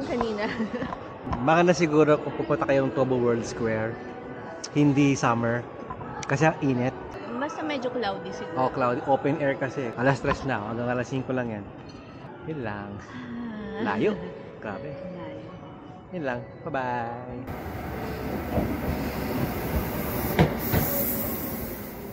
kanina. Baka na siguro kung pupunta kayong Tabo World Square, hindi summer. Kasi ang init. Basta medyo cloudy siguro. Oh, cloudy. Open air kasi. Alas 3 na. Hanggang alas 5 lang yan. Yun lang. Layo. Grabe. Layo. Yun lang. Bye-bye.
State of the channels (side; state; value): both; identical; correlation 1.00